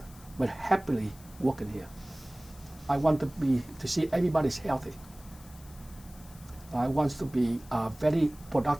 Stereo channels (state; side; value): noise; left; hiss, 22 dB below the sound